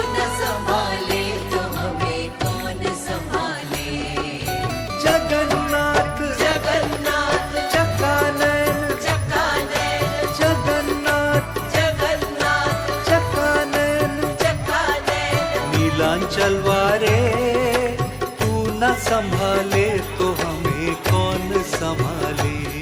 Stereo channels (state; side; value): identical; both; correlation 1.00